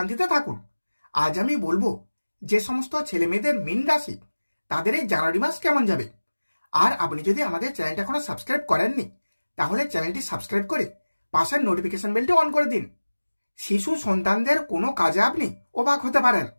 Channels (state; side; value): inverted; both; correlation -1.00